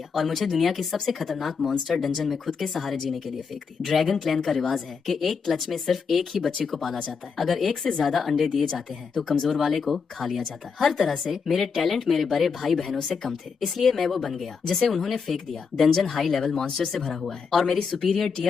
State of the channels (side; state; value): right; quieter; 5.6 dB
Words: और मुझे दुनिया की सबसे खतरनाक मॉन्स्टर डंजन में खुद के सहारे जीने के लिए फेंक दिया। ड्रैगन क्लैन का रिवाज है कि एक क्लच में सिर्फ एक ही बच्चे को पाला जाता है। अगर एक से ज्यादा अंडे दिए जाते हैं तो कमजोर वाले को खा लिया जाता है। हर तरह से मेरे टैलेंट मेरे बड़े भाई बहनों से कम थे, इसलिए मैं वो बन गया जिसे उन्होंने फेंक दिया। डंजन हाई लेवल मॉन्स्टर से भरा हुआ है और मेरी सुपीरियर